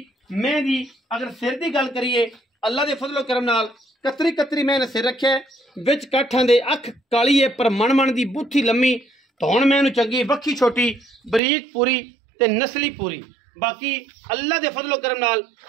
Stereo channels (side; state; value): left; drops out; at 11.4 s